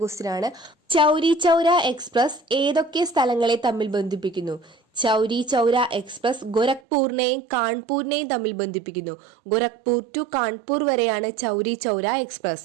ക്വസ്റ്റ്യൻ ആണ്. ചൗരി ചൗര എക്സ്പ്രസ് ഏതൊക്കെ സ്ഥലങ്ങളെ തമ്മിൽ ബന്ധിപ്പിക്കുന്നു? ചൗരി ചൗര എക്സ്പ്രസ് ഗോരഖ്പൂരിനെയും കാൺപൂരിനെയും തമ്മിൽ ബന്ധിപ്പിക്കുന്നു. ഗോരഖ്പൂർ ടു കാൺപൂർ വരെയാണ് ചൗരി ചൗര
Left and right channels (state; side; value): drops out; left; at 6.8 s